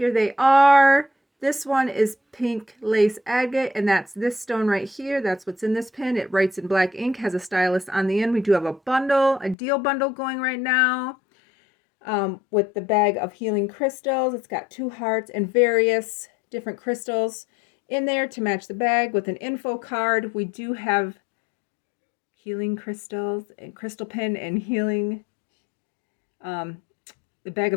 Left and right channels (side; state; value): right; drops out; at 9.6 s